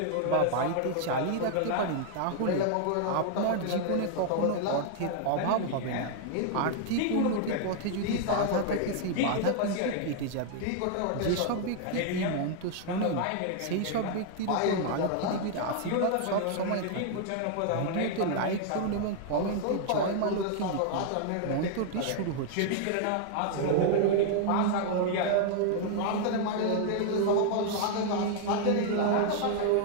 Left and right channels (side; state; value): both; different; correlation 0.00